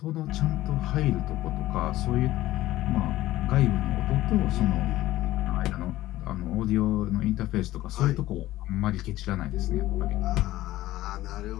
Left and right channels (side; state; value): right; quieter; 15.8 dB